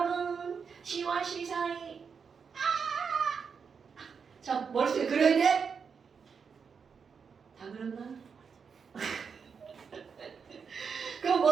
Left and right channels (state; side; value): quieter; left; 6.0 dB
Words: C와 C 사이 자 머릿속에 그려야 돼? 다 그렸나? 그럼